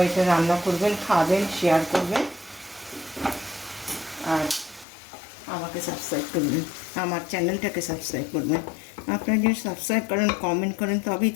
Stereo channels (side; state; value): right; drops out; at 4.9 s